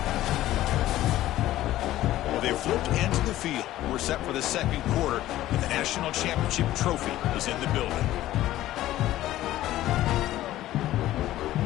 Well, they've flipped into the field. We're set for the second quarter, and the national championship trophy is in the building.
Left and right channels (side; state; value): right; quieter; 14.6 dB